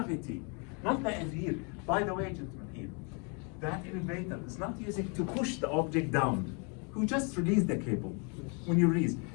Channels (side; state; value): right; quieter; 35.2 dB